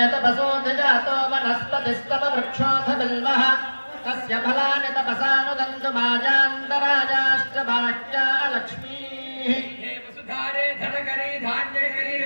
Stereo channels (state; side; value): inverted; both; correlation -1.00